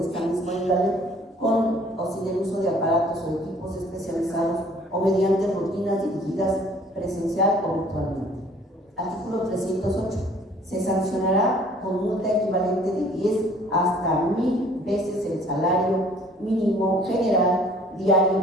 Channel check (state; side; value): normal; both; correlation 0.55